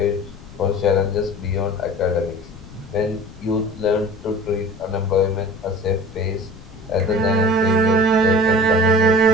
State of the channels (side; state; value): left; noise; rumble, 18 dB below the sound